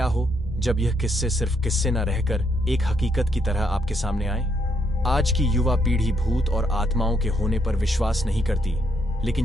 हो जब यह किस्से सिर्फ किस्से न रहकर एक हकीकत की तरह आपके सामने आए। आज की युवा पीढ़ी भूत और आत्माओं के होने पर विश्वास नहीं करती,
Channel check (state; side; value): normal; both; correlation 0.75